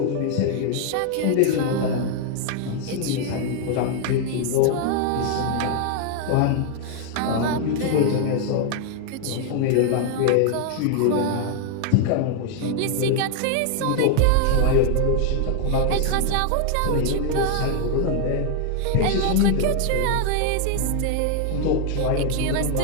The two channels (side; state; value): both; different; correlation 0.00